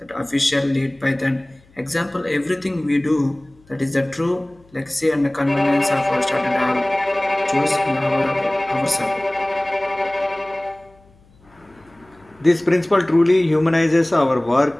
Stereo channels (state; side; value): noise; left; hum, 29 dB below the sound